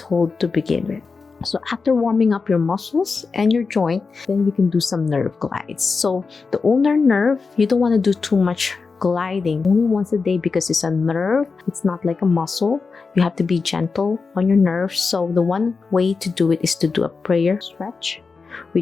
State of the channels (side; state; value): right; quieter; 4.6 dB